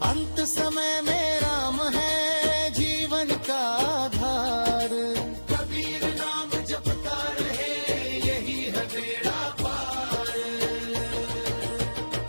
अंत समय में राम है जीवन का आधार, कबीर नाम जपता रहे यही है बेड़ा पार।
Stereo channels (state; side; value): inverted; both; correlation -1.00